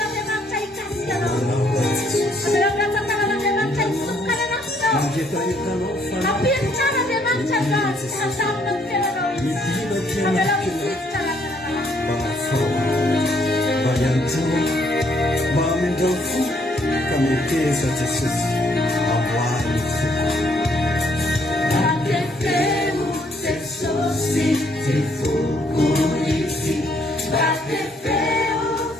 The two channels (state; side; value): normal; both; correlation 0.68